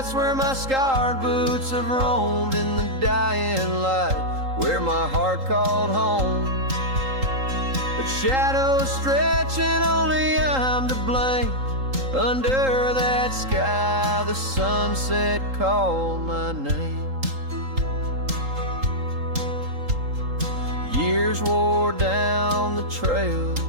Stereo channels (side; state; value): left; late; 3.8 ms